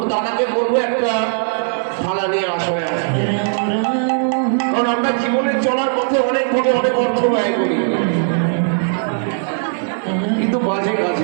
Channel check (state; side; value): silent; left; 55 dB below the other